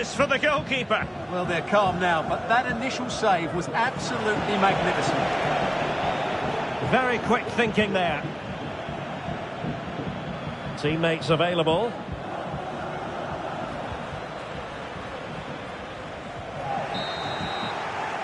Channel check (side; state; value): both; identical; correlation 1.00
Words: for the goalkeeper. Well, they're calm now, but that initial save was absolutely magnificent. Very quick thinking there. Teammates available.